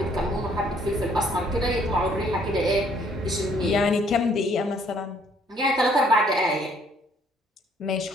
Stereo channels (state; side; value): normal; both; correlation 0.63